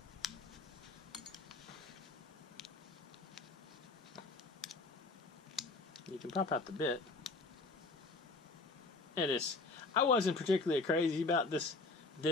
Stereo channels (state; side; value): quieter; right; 3.5 dB